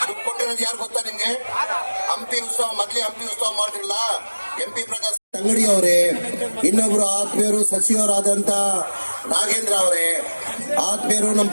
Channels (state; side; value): inverted; both; correlation -1.00